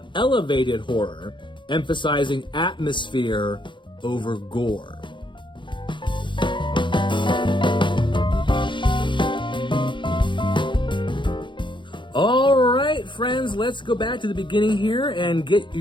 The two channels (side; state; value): right; late; 0.23 ms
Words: elevated horror, emphasizing atmosphere over gore? All right, friends, let's go back to the beginning here and get